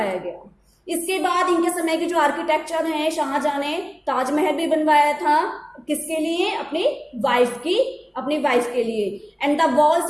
गया। इसके बाद इनके समय के जो आर्किटेक्चर हैं, शाहजहां ने ताजमहल भी बनवाया था, किसके लिए, अपनी वाइफ के लिए। And the walls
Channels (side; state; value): both; identical; correlation 1.00